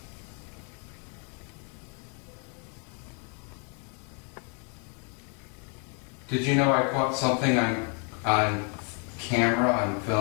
Did you know I caught something on camera, on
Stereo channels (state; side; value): quieter; right; 38.6 dB